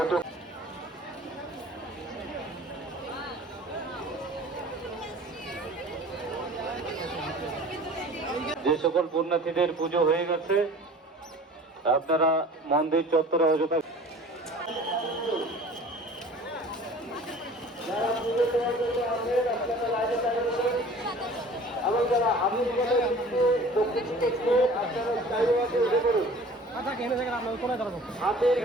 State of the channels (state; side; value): normal; both; correlation 0.45